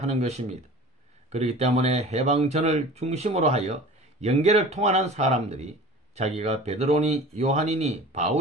것입니다. 그렇기 때문에 해방전을 중심으로 하여 영계를 통하는 사람들이 자기가 베드로니 요한이니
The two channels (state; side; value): normal; both; correlation 0.40